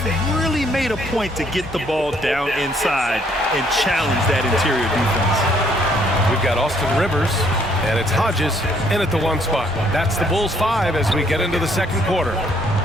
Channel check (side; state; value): both; normal; correlation 0.66